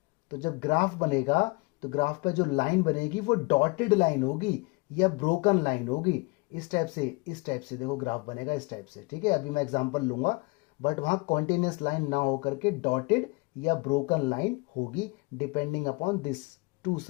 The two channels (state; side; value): quieter; right; 26.7 dB